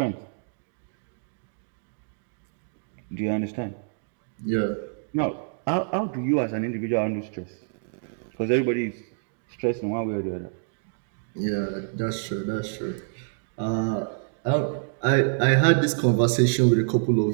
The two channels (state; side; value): silent; left; digital silence